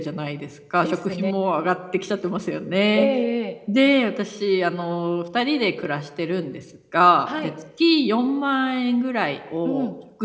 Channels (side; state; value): both; identical; correlation 1.00